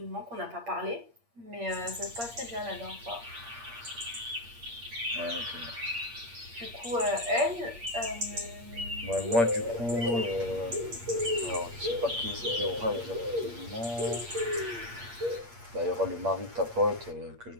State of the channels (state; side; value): late; left; 8.6 ms